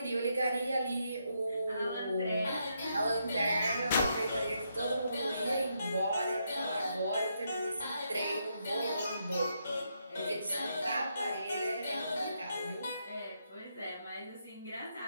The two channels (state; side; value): inverted; both; correlation -0.79